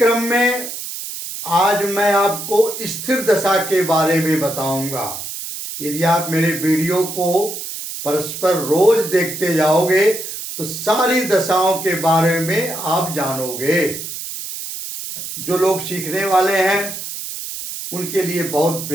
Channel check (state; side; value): noise; right; hiss, 8 dB below the sound